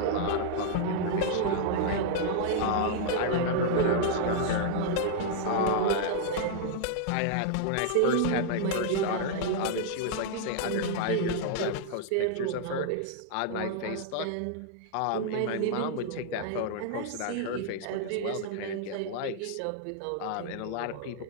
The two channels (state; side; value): different; both; correlation -0.01